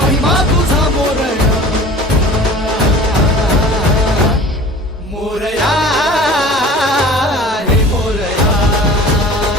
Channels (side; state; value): both; normal; correlation 0.42